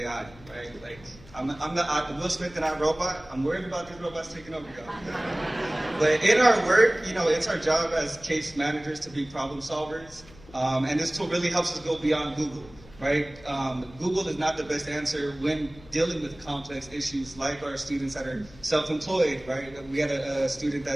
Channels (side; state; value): left; noise; hum, 22 dB below the sound